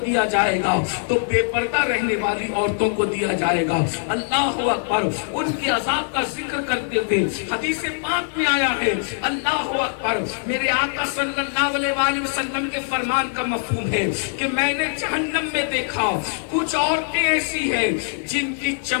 جائے گا تو بے پردہ رہنے والی عورتوں کو دیا جائے گا. اللہ اکبر. ان کے عذاب کا ذکر کرتے ہوئے حدیث پاک میں آیا ہے, اللہ اکبر, میرے آقا صلی اللہ علیہ وآلہ وسلم کے فرمان کا مفہوم ہے کہ میں نے جہنم میں دیکھا کچھ عورتیں ایسی ہیں جن کی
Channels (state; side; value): silent; right; digital silence